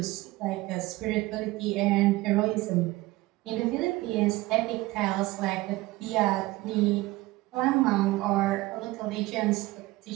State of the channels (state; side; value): quieter; left; 19.6 dB